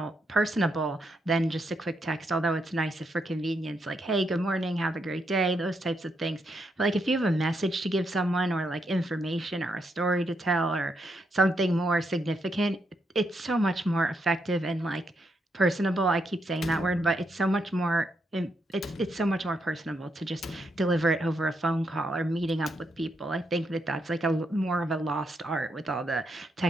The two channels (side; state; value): both; normal; correlation 0.79